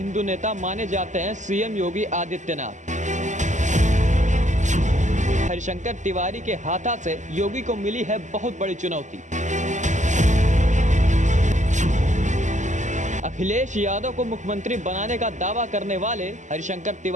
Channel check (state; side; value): late; left; 0.35 ms